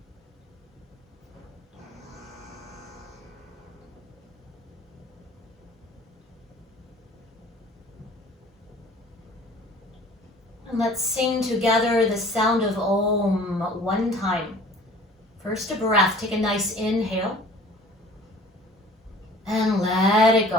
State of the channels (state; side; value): normal; both; correlation 0.48